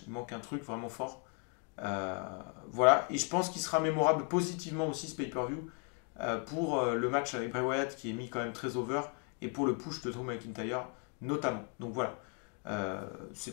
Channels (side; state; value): right; quieter; 38.5 dB